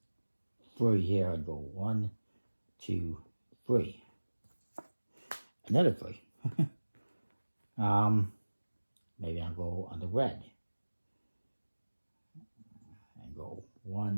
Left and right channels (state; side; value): inverted; both; correlation -1.00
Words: 3 here and go 1, 2, 3. Another 3. Maybe I'll go on the red. And go